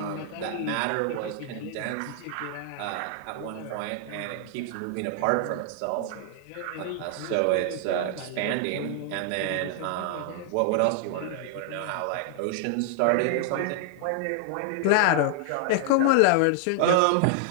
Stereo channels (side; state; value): both; different; correlation 0.00